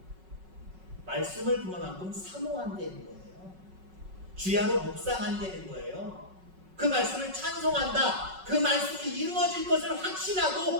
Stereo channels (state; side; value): late; left; 5.4 ms